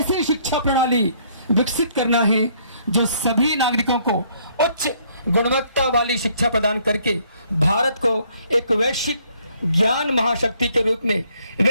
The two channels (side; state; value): both; inverted; correlation -0.65